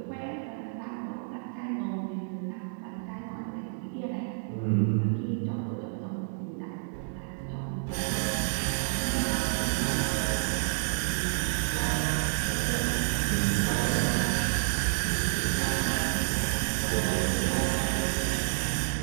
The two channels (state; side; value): silent; left; digital silence